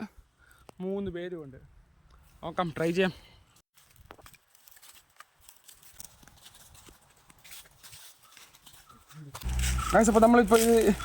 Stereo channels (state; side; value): identical; both; correlation 1.00